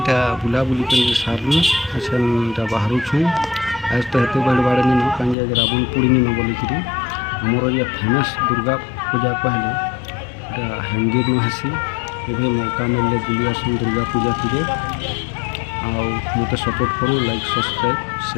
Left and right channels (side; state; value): right; drops out; at 5.4 s